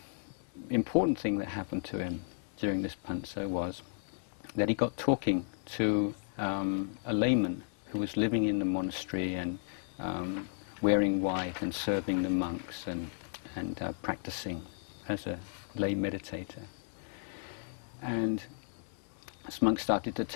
important thing that happened to him during this pansa was that he got talking to a layman who was living in the monastery and wearing white and serving the monks and practicing as a lay meditator. And this monk started to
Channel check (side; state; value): right; silent; digital silence